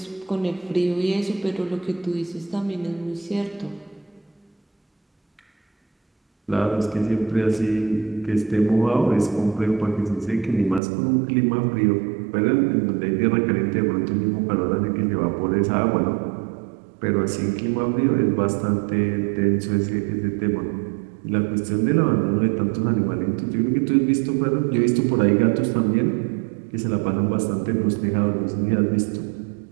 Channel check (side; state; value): left; drops out; at 10.8 s